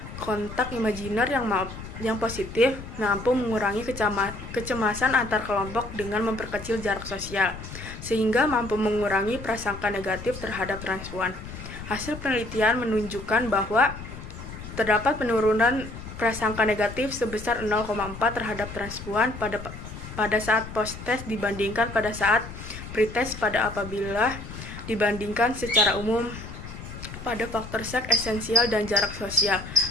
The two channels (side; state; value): left; noise; rumble, 11 dB below the sound